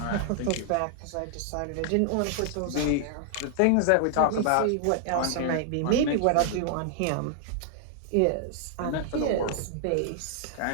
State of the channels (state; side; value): different; both; correlation 0.00